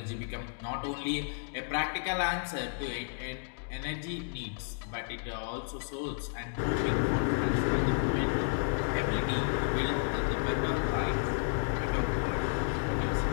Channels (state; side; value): silent; right; digital silence